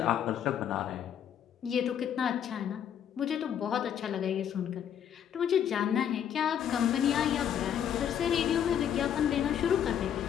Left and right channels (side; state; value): right; quieter; 9.2 dB